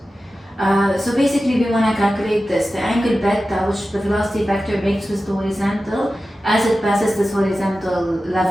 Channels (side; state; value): both; normal; correlation 0.94